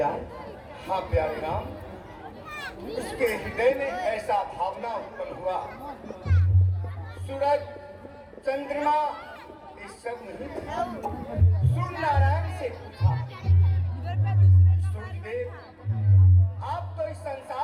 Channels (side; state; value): both; identical; correlation 1.00